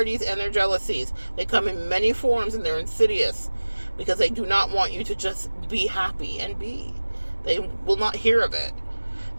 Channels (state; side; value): inverted; both; correlation -1.00